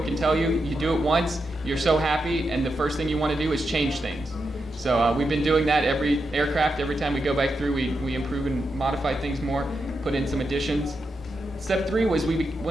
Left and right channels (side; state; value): both; normal; correlation 0.86